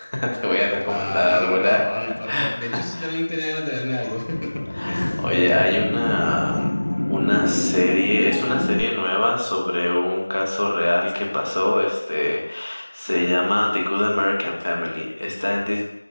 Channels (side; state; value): both; inverted; correlation -1.00